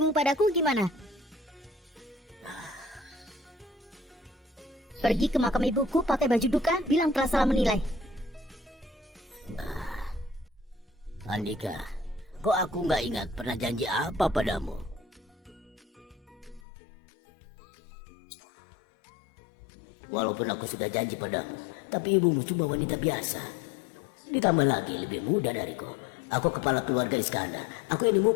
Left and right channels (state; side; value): drops out; right; at 16.6 s